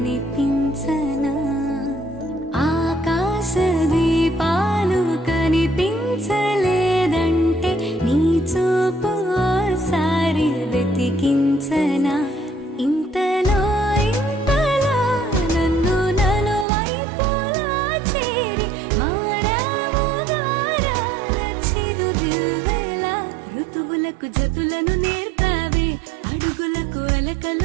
ఆకాశ దీపాలు కనిపించలేదంటే నీ చూపు ఓసారి వెతికించనా ఇంతలో ఇంతలో నన్ను నలువైపులా చేరి మారావు గారాల చిరుదివ్వెలా ఋతువులకు జతులను నేర్పావే అడుగులకు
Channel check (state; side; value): drops out; left; at 16.7 s